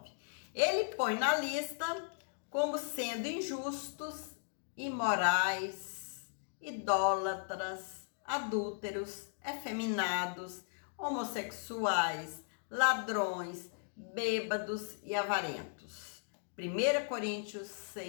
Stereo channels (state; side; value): silent; right; digital silence